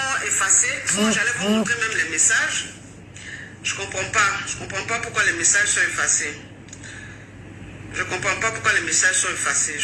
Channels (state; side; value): identical; both; correlation 1.00